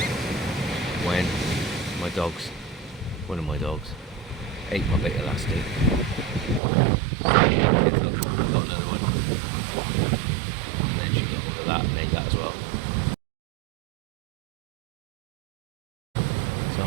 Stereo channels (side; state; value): left; drops out; at 6.6 s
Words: when one of my dogs ate my bait elastic. I got another one, and then she got hold of that and ate that as well. So I